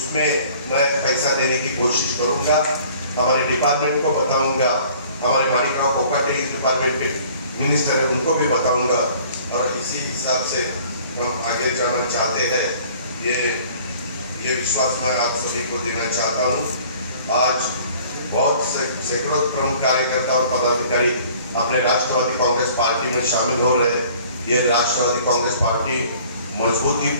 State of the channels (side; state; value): both; inverted; correlation -0.52